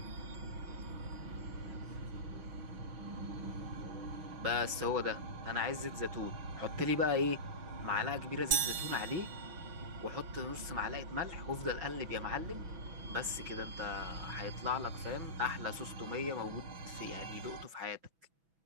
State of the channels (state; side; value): late; left; 6.1 ms